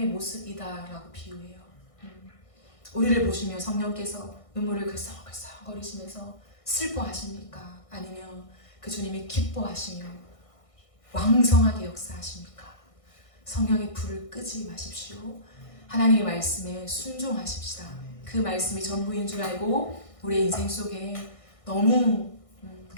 모습이다라고 비유해요. 우리를 보시며 성령께서 눈물을 글썽글썽거리시면서 슬퍼하십니까? 아니면 그 주님이 기뻐하시며 왕성하게 역사하십니까? 성령의 불을 끄지 마십시오. 하나님의 말씀에 순종하십시다. 그 말씀이 전부인 줄 알고 우리의 인생 속에 너무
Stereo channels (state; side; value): late; right; 1.6 ms